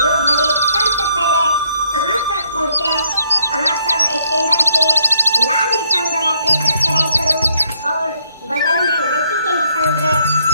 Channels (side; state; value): both; inverted; correlation -0.72